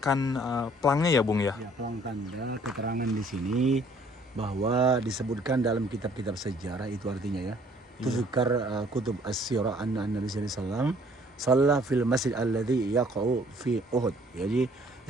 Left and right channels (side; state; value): both; normal; correlation 0.59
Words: pelangnya ya Bung ya? Ya, pelang tanda keterangan di sini bahwa disebutkan dalam kitab-kitab sejarah, itu artinya ya, tuzkar kutub as-sirah anna Nabi sallallahu alaihi wasallam shalla fil masjid alladhi yaqa'u fi Uhud. Jadi